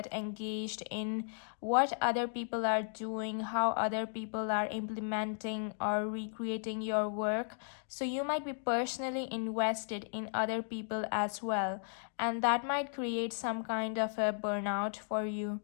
engaged in what other people are doing, how other people are implementing or recreating your work. So you might be personally invested in other people as well, and that might create some kind of a burnout for you.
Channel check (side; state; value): right; silent; digital silence